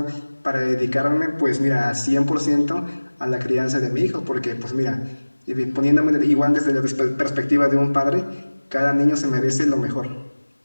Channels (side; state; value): both; inverted; correlation -1.00